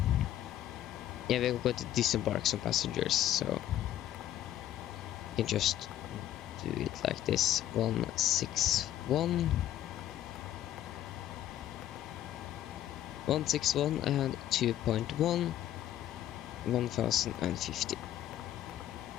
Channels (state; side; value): quieter; right; 12.2 dB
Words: Yeah, we're going to disembark some passengers, so you can just do it like this. 161 and 2.1 1050.